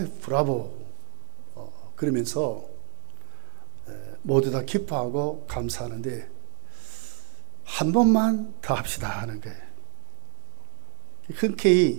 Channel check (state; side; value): silent; left; 61 dB below the other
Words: 브라보 그러면서 모두 다 기뻐하고 감사하는데 한 번만 더 합시다 하는 거예요.